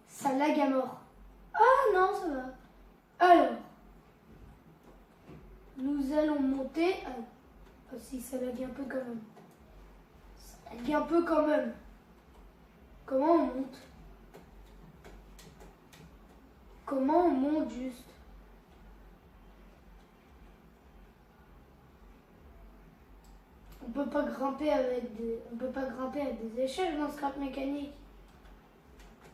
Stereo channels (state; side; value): identical; both; correlation 1.00